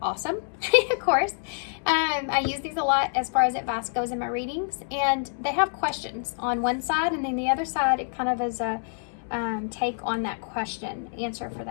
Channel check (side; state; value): right; silent; 60 dB below the other